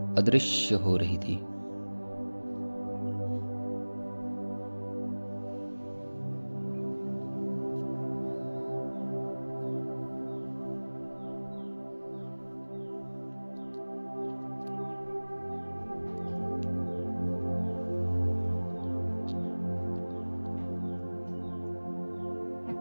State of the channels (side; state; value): both; inverted; correlation -1.00